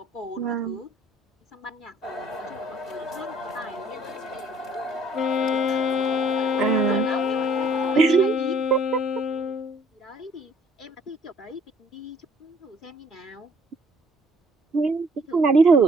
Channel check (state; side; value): normal; both; correlation 0.59